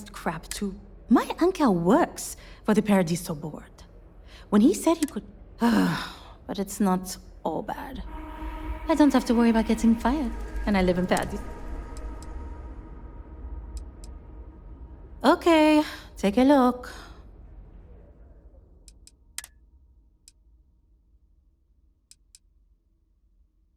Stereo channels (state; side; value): identical; both; correlation 1.00